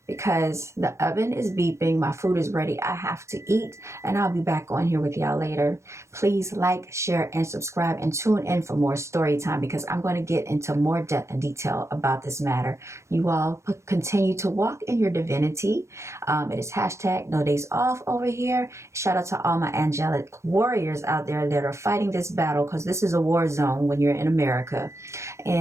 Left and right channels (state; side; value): late; left; 0.14 ms